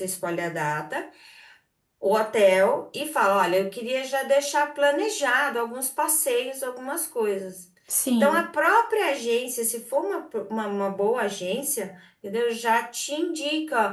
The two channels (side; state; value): both; identical; correlation 1.00